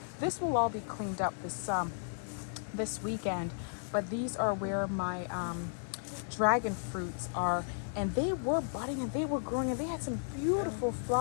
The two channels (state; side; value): silent; right; 55 dB below the other